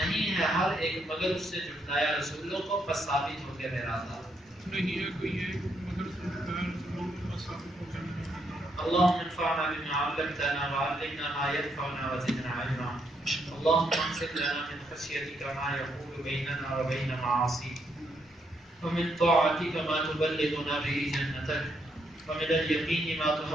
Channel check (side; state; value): both; normal; correlation 0.76